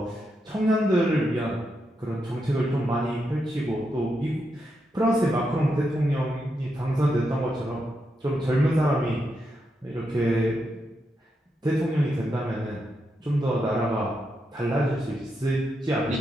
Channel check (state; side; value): normal; both; correlation 0.84